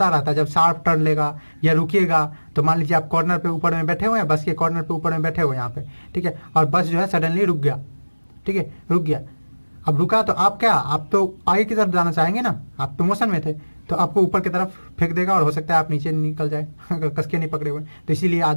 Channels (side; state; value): both; inverted; correlation -1.00